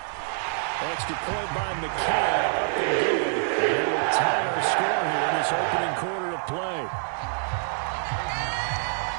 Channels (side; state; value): left; silent; 61 dB below the other